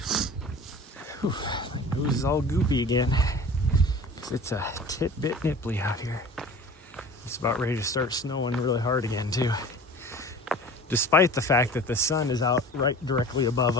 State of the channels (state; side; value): normal; both; correlation 0.40